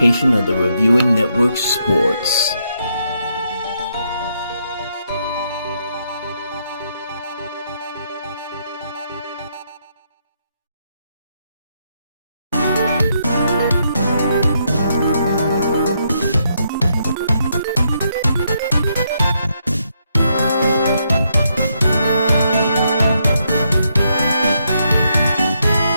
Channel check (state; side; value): inverted; both; correlation -0.77